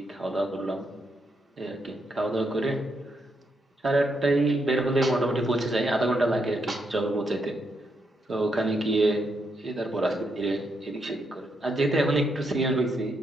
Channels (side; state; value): both; normal; correlation 0.80